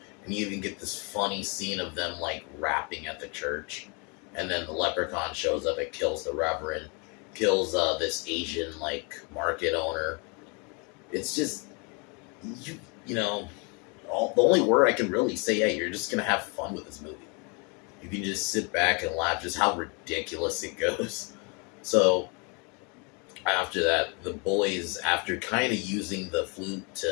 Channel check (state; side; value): quieter; right; 32.7 dB